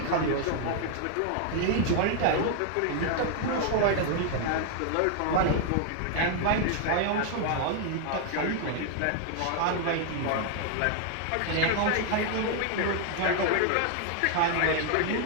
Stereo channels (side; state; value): both; different; correlation 0.00